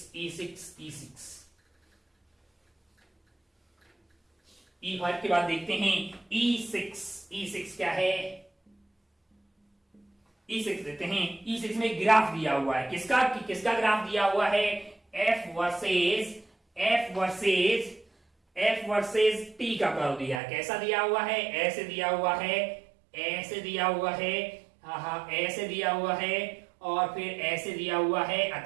E5 के बाद देखते हैं E6 क्या है। E6 देखते हैं। E6 में ग्राफ दिया हुआ है, किसका ग्राफ दिया हुआ है, F वर्सेस T का कर्व दिया है। कैसा दिया हुआ है, ऐसे दिया हुआ है, ऐसे दिया हुआ है, ऐसे दिया हुआ है, और फिर ऐसे दिया हुआ है।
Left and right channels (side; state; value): left; drops out; at 20.4 s